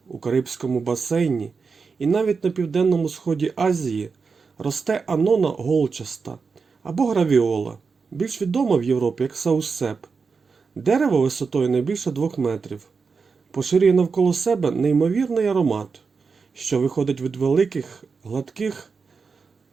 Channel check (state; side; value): quieter; left; 5.0 dB